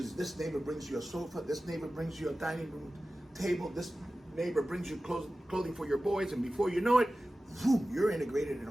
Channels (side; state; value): both; normal; correlation 0.95